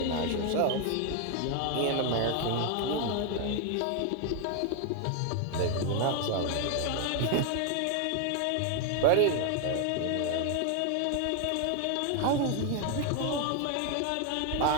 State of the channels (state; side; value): different; both; correlation 0.01